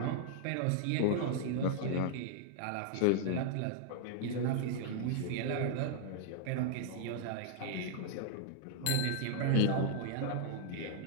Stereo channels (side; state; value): both; different; correlation -0.01